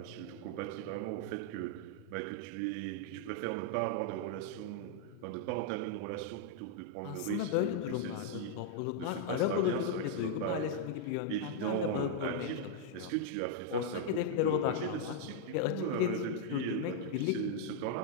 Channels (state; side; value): different; both; correlation -0.01